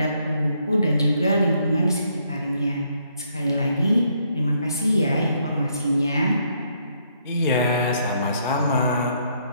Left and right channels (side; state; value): both; inverted; correlation -0.72